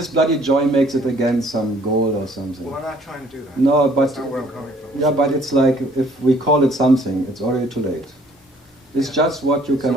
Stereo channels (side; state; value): both; normal; correlation 0.59